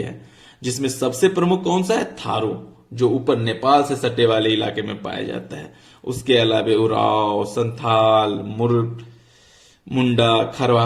जिसमें सबसे प्रमुख कौन सा है? थारू, जो ऊपर नेपाल से सटे वाले इलाके में पाया जाता है। उसके अलावा उराव, संथाल, मुंडा,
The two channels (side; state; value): both; identical; correlation 1.00